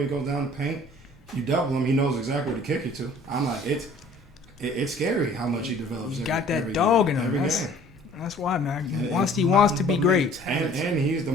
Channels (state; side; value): normal; both; correlation 0.52